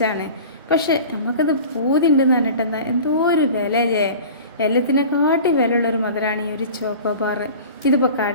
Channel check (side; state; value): both; inverted; correlation -0.39